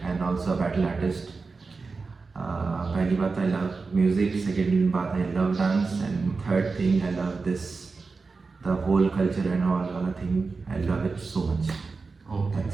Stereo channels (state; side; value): quieter; left; 4.3 dB